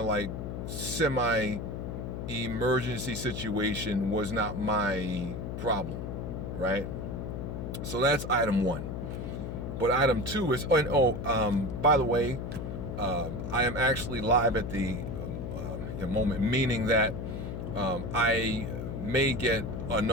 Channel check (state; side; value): noise; left; hum, 5 dB below the sound